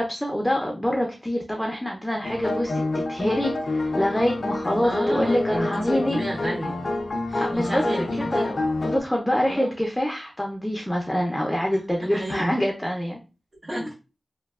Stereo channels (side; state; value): both; normal; correlation 0.97